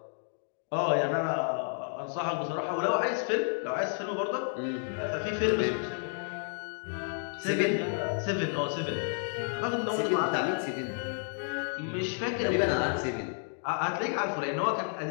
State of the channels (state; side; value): silent; right; digital silence